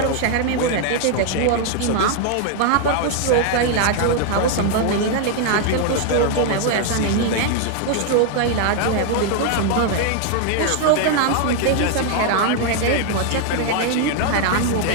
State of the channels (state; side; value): different; both; correlation 0.00